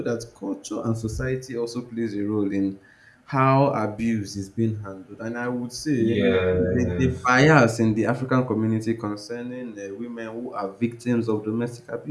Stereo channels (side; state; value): both; identical; correlation 1.00